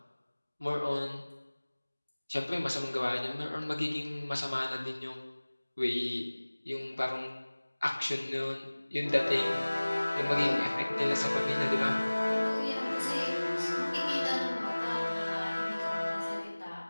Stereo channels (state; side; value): inverted; both; correlation -1.00